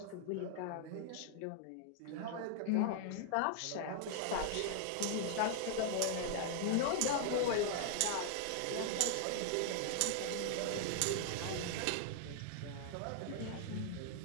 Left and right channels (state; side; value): different; both; correlation -0.01